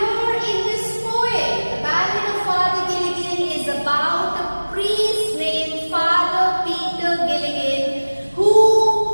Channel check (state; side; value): inverted; both; correlation -1.00